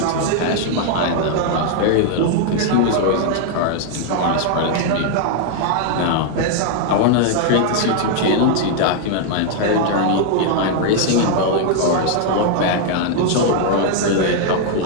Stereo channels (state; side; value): different; both; correlation 0.00